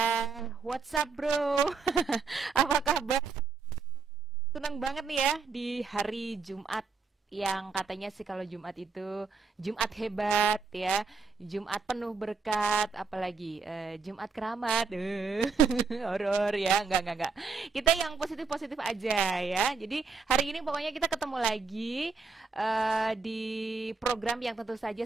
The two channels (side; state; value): left; quieter; 4.9 dB